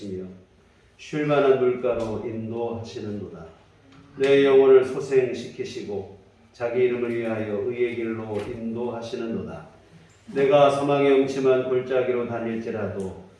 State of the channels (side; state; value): both; identical; correlation 1.00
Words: 쉴만한 물가로 인도하시는도다. 내 영혼을 소생시키시고 자기 이름을 위하여 의의 길로 인도하시는도다. 내가 사망의 음침한 골짜기로 다닐지라도